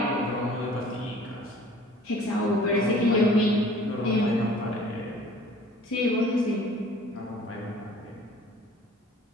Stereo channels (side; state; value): both; normal; correlation 0.50